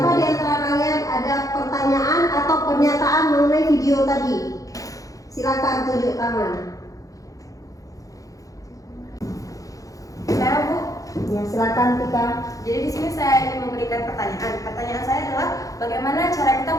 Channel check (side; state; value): right; late; 0.17 ms